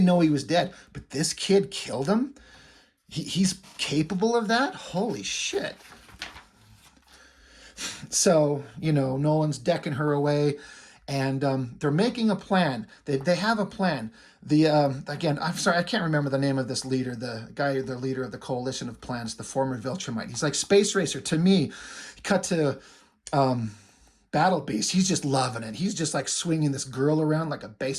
know he was dead. But this kid killed him? He's capable of that? Holy shit. So, Nolan's decking her away. And they're making a plan. They have a plan. Again, I'm sorry, I can't remember the name of this leader, the leader of the Coalition of Planets, the former Viltrumite. He's like, Space Racer to me. Cut to Battle Beast. He's just loving it. He's just like swinging this girl around like a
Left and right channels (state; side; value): identical; both; correlation 1.00